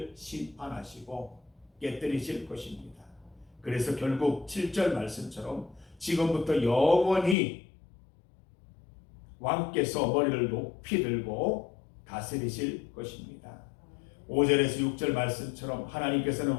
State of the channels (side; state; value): right; drops out; at 7.4 s